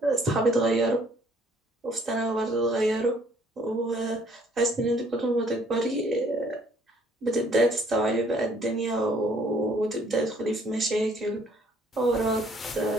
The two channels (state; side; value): normal; both; correlation 0.62